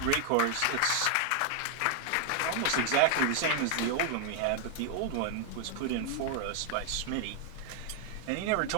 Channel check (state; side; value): different; both; correlation 0.00